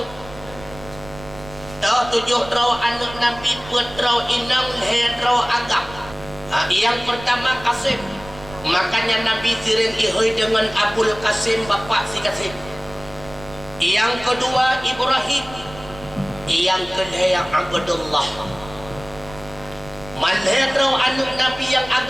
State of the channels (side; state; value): right; noise; rumble, 17 dB below the sound